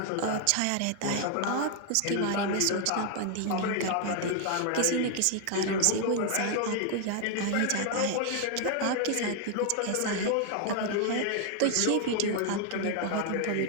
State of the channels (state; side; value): different; both; correlation 0.00